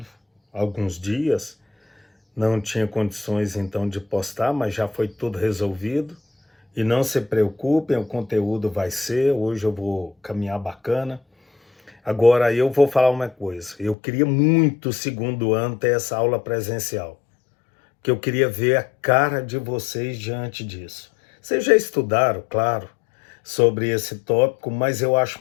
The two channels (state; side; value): drops out; right; at 14.0 s